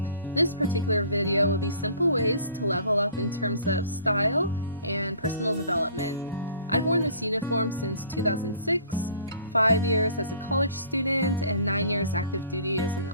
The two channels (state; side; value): inverted; both; correlation -0.51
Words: This particular video will be simple ways to level up in terms of style and personal development. I've worn this uniform since 2006, 5 years as a college student, and 9 years active duty as an